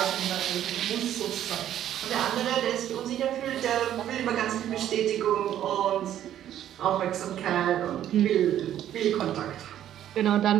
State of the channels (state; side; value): quieter; left; 11.3 dB